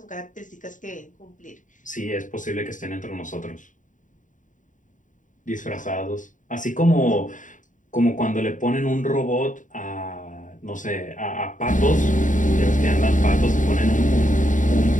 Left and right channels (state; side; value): late; right; 0.37 ms